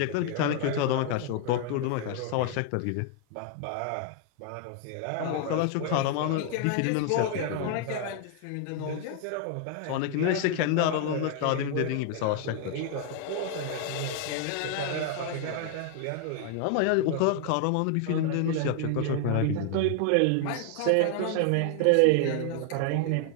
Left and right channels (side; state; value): both; different; correlation 0.00